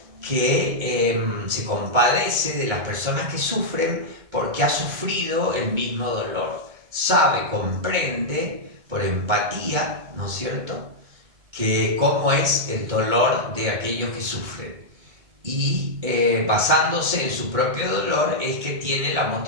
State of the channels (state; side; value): late; left; 2.2 ms